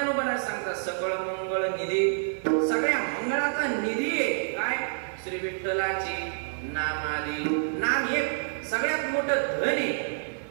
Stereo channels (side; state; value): left; silent; digital silence